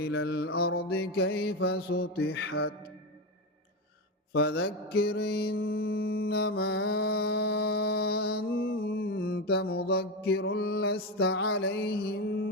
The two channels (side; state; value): both; normal; correlation 0.15